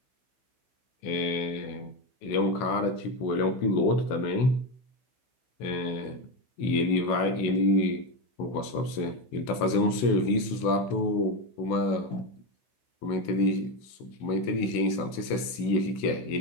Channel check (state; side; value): late; right; 16 ms